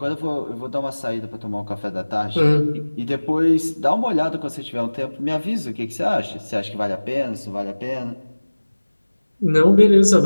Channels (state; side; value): inverted; both; correlation -1.00